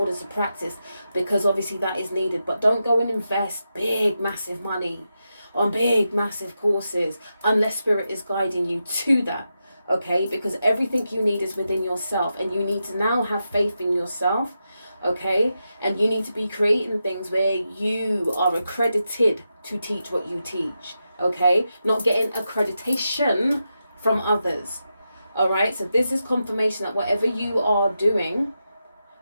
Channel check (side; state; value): both; inverted; correlation -0.88